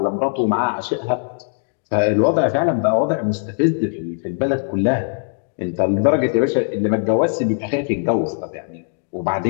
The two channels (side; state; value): right; silent; digital silence